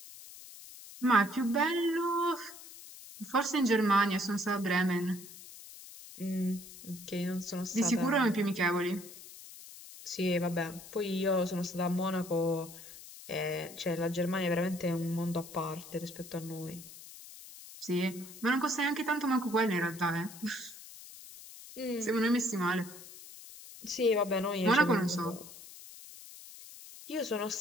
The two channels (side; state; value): left; noise; hiss, 16 dB below the sound